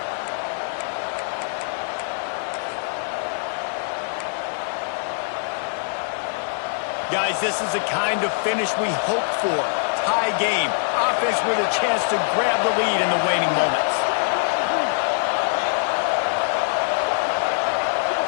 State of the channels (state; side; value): silent; right; digital silence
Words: Guys, this is the kind of finish we hope for. Tie game. Offense with a chance to grab the lead in the waning moments.